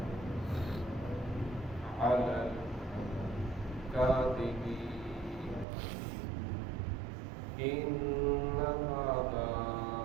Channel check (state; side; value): drops out; left; at 5.7 s